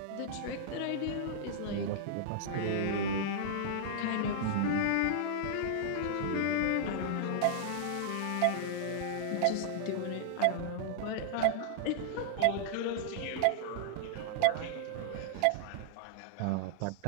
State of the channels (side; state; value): both; different; correlation -0.01